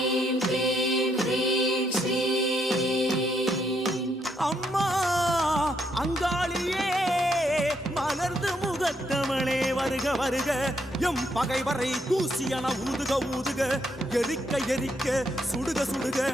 அம்மா அங்காளியே மலர்ந்து முகத்தவளே வருக வருக எம் பகைவரை தூசியன ஊதுக ஊதுக எரிக்க எரிக்க சுடுக சுடுக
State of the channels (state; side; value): normal; both; correlation 0.75